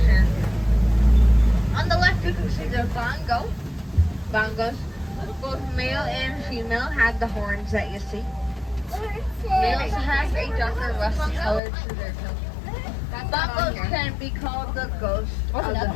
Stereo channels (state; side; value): drops out; right; at 11.6 s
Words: On the left, you can see the bongo. Bongos, both male and female, have the horns that you see. Males have a darker rusty color to their coat. Bongos can be called the ghost of the